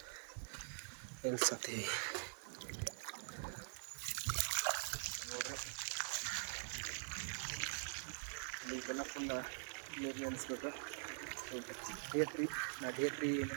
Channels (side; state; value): left; silent; digital silence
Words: ನಿಲ್ಸತ್ತೀವಿ ನೋಡ್ರಿ. ಇದೆಲ್ಲ ಫುಲ್ ನೀರು ನಿಲ್ಲಿಸ್ಬೇಕು. ಸೊ ಡೇ 3